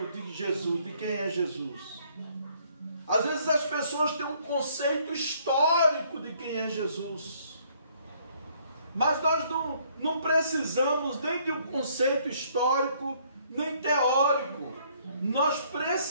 de Jesus, de quem é Jesus. Às vezes as pessoas têm um conceito histórico de quem é Jesus. Mas nós não precisamos nem de um conceito histórico, nem teórico. Nós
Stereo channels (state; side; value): inverted; both; correlation -0.64